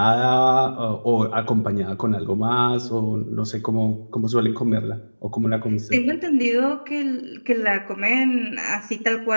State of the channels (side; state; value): both; inverted; correlation -1.00